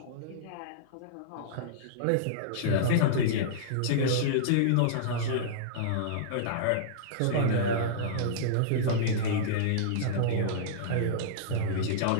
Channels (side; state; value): both; different; correlation -0.03